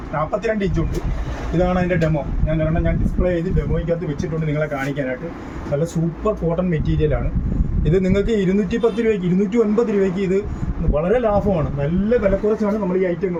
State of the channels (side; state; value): both; identical; correlation 1.00